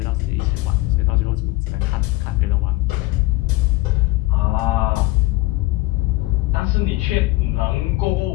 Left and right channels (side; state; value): right; quieter; 19.6 dB